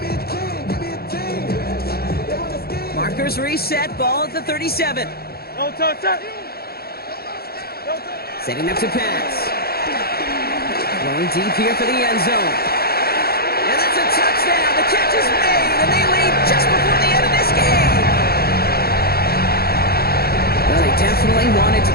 Markers reset, ball at the 37. No touch. Setting up to pass. Going deep here for the end zone. And that's a touchdown. The catch is made, and they lead just before the end of this game. Well, they definitely wanted to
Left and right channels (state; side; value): late; right; 0.45 ms